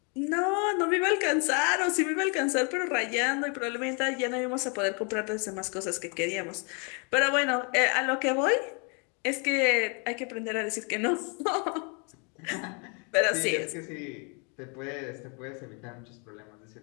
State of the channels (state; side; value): quieter; right; 35.1 dB